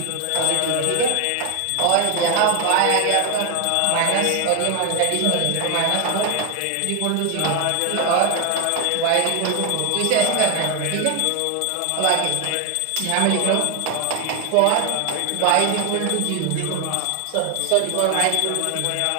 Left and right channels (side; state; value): both; different; correlation 0.01